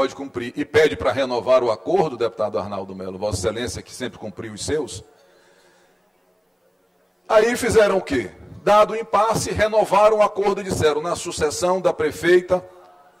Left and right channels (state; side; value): identical; both; correlation 1.00